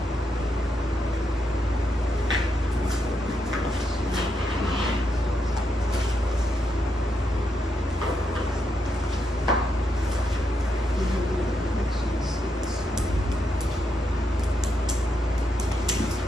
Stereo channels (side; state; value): both; normal; correlation 0.81